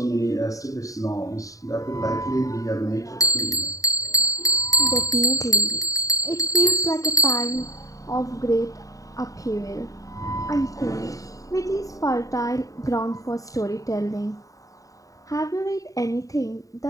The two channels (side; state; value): right; late; 0.16 ms